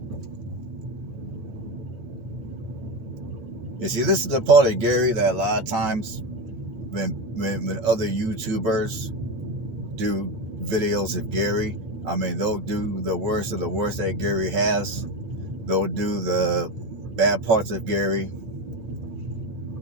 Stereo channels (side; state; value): left; late; 8.9 ms